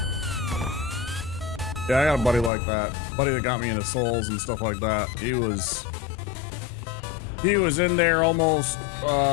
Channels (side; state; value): right; drops out; at 2.5 s